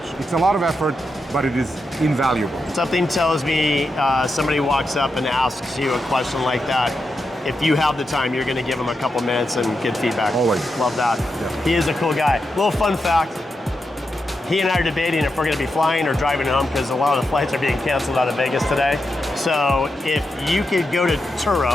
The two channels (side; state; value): both; normal; correlation 0.87